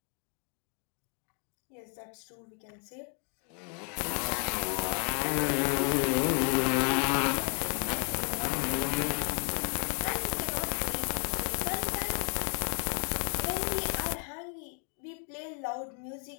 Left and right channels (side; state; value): right; quieter; 39.5 dB